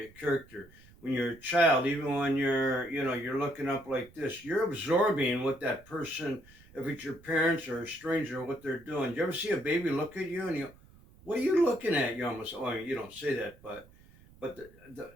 character. When you're a child, even when you're looking up like this, you're absorbing what that person, if it's your parents or a stranger, what they're doing. Do you ever see a baby look at you and you, what are you looking at? You almost, you don't say that, but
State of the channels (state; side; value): noise; right; rumble, 25 dB below the sound